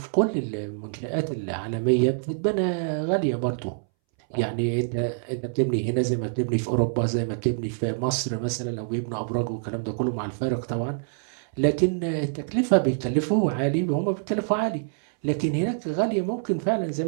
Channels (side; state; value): left; silent; 61 dB below the other